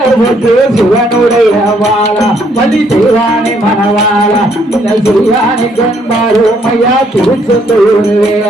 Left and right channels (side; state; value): both; normal; correlation 0.69